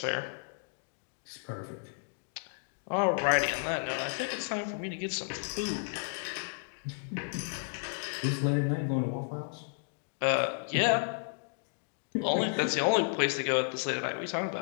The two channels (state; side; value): silent; right; digital silence